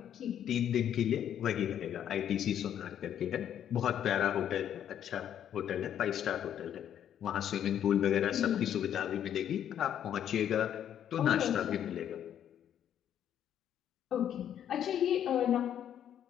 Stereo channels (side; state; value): right; quieter; 9.9 dB